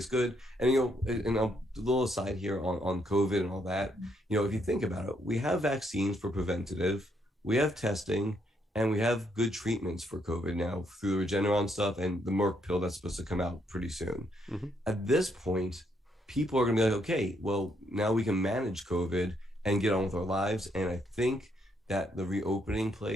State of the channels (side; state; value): both; normal; correlation 0.74